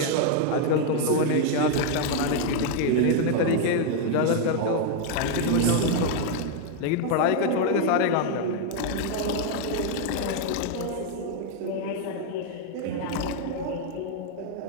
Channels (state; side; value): different; both; correlation 0.00